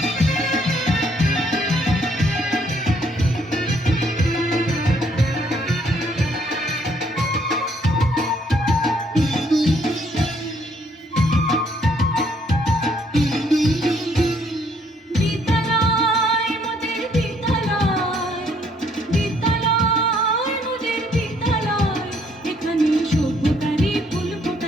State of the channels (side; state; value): both; normal; correlation 0.67